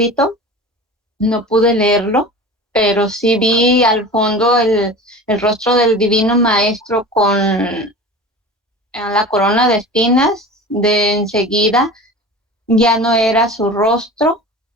No pude leerlo, pero sí vi al fondo el rostro del Divino Maestro con la corona de espinas. De enseguida ya no era su rostro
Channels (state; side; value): normal; both; correlation 0.35